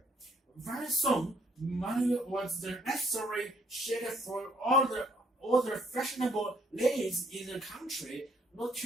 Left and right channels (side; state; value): both; normal; correlation 0.66